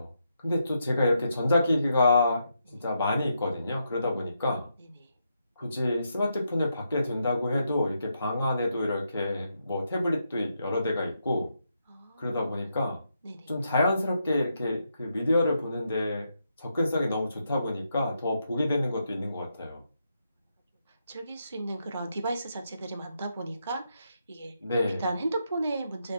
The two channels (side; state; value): both; inverted; correlation -0.81